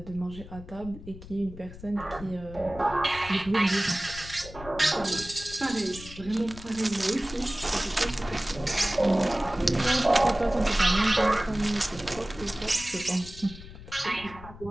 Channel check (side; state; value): left; noise; rumble, 16 dB below the sound